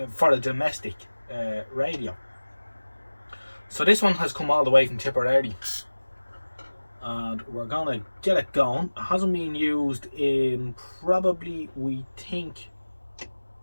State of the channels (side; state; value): both; inverted; correlation -1.00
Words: for a domestic radio. So this one has come all the way from Tipperary, and we're gonna get it going. It hasn't been used in probably, we think,